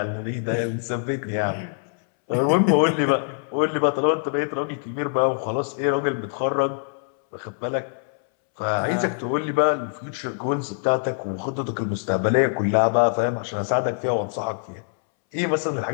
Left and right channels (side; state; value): right; silent; 63 dB below the other